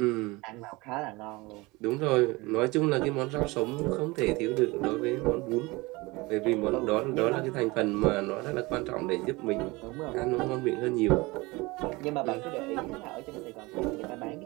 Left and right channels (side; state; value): left; quieter; 23.1 dB